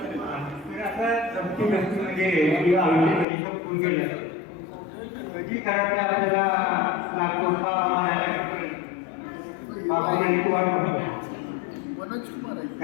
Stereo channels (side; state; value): right; drops out; at 3.2 s